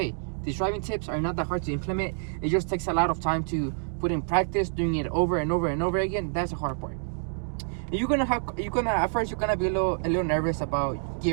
these driving tips are not that hard to implement. It just takes a lot of time to put in practice, doing it over and over and over again. That's the hard part. At first you're gonna be a little nervous about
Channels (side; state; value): left; silent; 60 dB below the other